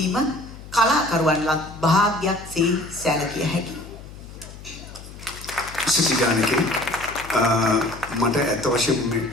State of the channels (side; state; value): left; noise; hum, 16 dB below the sound